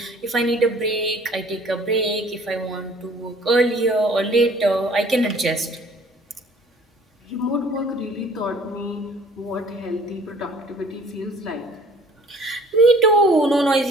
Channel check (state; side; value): normal; both; correlation 0.53